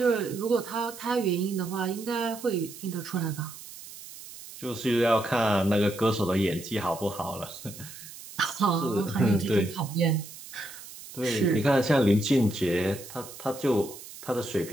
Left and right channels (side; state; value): right; noise; hiss, 15 dB below the sound